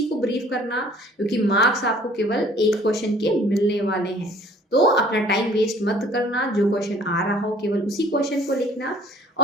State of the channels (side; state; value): both; normal; correlation 0.54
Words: को ब्रीफ करना, क्योंकि मार्क्स आपको केवल एक क्वेश्चन के मिलने वाले हैं। तो अपना टाइम वेस्ट मत करना, जो क्वेश्चन आ रहा हो केवल उसी क्वेश्चन को लिखना।